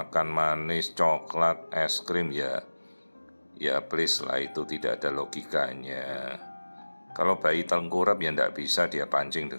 manis, coklat, es krim ya please lah, itu tidak ada logikanya. Kalau bayi tengkurap ya tidak bisa dia pancing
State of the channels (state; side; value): inverted; both; correlation -1.00